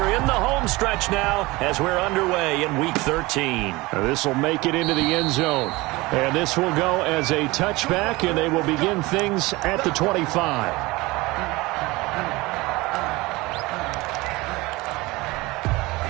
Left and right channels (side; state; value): left; quieter; 21.8 dB